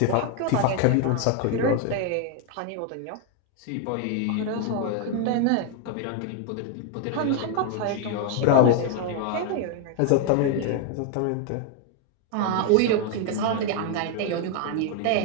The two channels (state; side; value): different; both; correlation 0.01